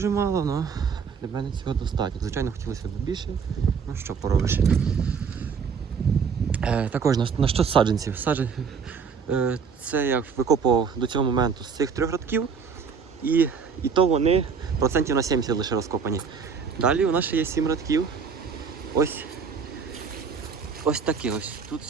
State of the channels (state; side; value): quieter; left; 6.0 dB